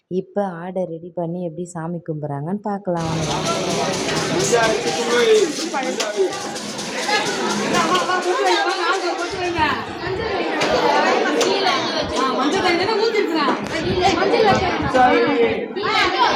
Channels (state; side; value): identical; both; correlation 1.00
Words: இப்போ ஆடை ரெடி பண்ணி எப்படி சாமி கும்பிட்றாங்கன்னு பார்க்கலாம் வாங்க.